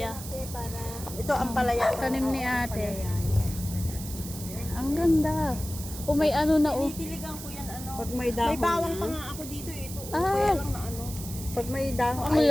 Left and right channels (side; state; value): right; noise; hiss, 11 dB below the sound